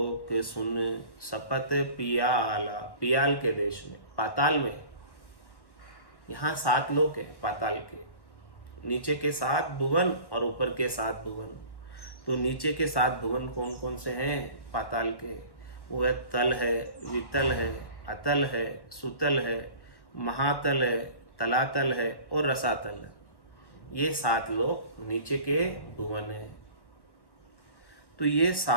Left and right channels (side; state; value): right; late; 1.1 ms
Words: सुन शपथ पियाला, पियाल के देश में, पाताल में। यहाँ 7 लोक है पाताल के, नीचे के 7 भुवन और ऊपर के 7 भुवन। तो नीचे के 7 भुवन कौन कौन से हैं पाताल के? वो है तल है, वितल है, अतल है, सुतल है, महातल है, तलातल है और रसातल है। ये 7 लोक नीचे के भुवन है। तो ये